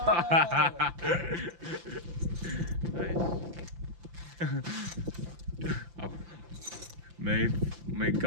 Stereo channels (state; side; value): late; left; 5.8 ms